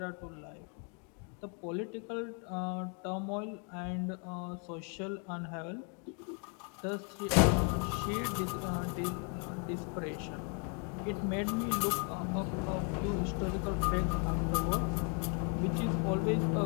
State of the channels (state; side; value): quieter; right; 38.7 dB